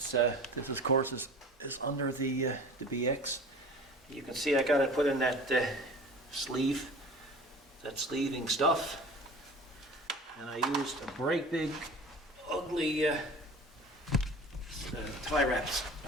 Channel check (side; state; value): both; normal; correlation 0.40